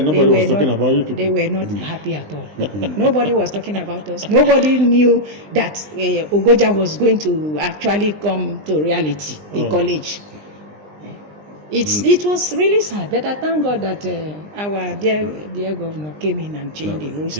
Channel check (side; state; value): left; late; 20 ms